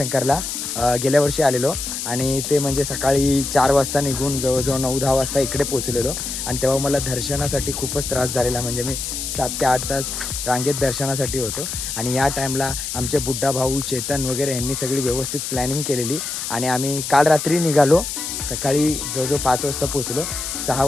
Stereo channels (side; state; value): left; noise; hiss, 5 dB below the sound